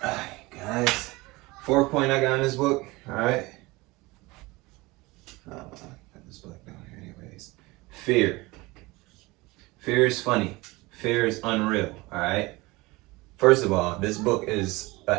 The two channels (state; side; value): quieter; left; 22.3 dB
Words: All right, guys. 4th point I got in this book, all right? Put this book down here anyways. Fear. Fear is funny. Fear is unreal, all right? First of all, this book is an